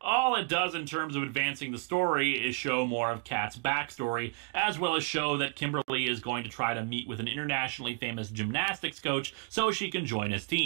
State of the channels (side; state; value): left; quieter; 35.8 dB